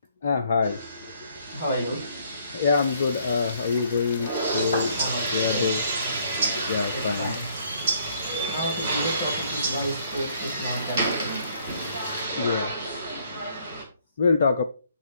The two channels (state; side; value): inverted; both; correlation -0.65